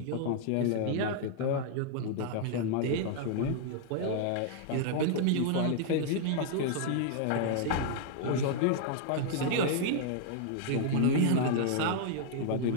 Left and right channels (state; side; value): different; both; correlation -0.01